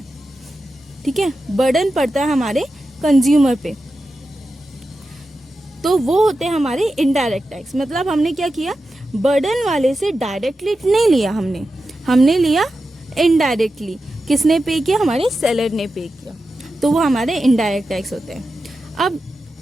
ठीक है, बर्डन पड़ता है हमारे कंज्यूमर पे। तो वो होते हैं हमारे इनडायरेक्ट टैक्स। मतलब हमने क्या किया, बर्डन वाले से डायरेक्टली नहीं लिया, हमने लिया इनडायरेक्टली। किसने पे किया, हमारे सेलर ने पे किया। तो वो हमारे इनडायरेक्ट टैक्स होते हैं।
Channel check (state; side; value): normal; both; correlation 0.91